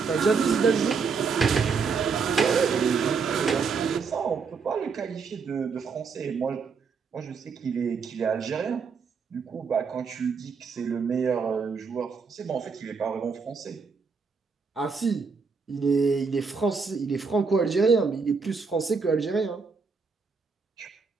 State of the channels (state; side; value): quieter; left; 5.2 dB